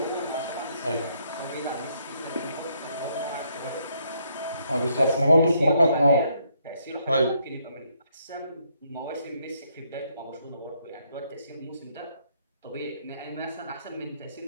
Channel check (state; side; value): inverted; both; correlation -0.72